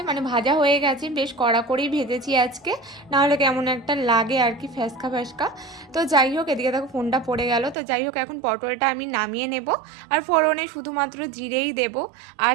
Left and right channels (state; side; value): drops out; left; at 7.8 s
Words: মানে ভাজা হয়ে গেছে, বেশ কড়া করেই ভেজেছি আজকে, নাহলে কেমন একটা লাগে আর কি, ফ্যাসকা ফ্যাসকা। তো যাই হোক, এদিকে দেখো ফোনটা পড়ে গেল। তো যাই হোক, এখন পটলটা আমি নামিয়ে নেব। আর ফোড়নে শুধুমাত্র জিরেই দেব, আর